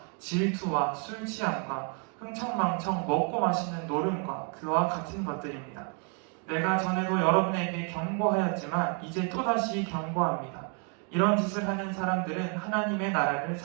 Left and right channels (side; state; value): left; quieter; 37.9 dB